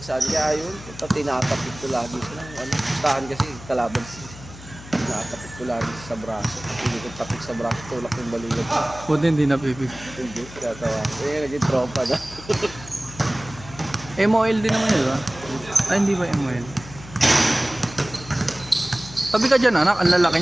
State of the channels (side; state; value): left; noise; hum, 16 dB below the sound